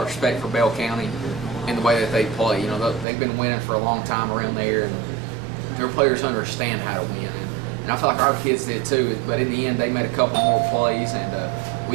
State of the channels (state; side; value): drops out; left; at 3.1 s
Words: of respect for Bell County and the way that they play. They've been winning for a long time around there, and their players understand how to win. And I feel like our kids did too. But in the end, they made a couple more plays, and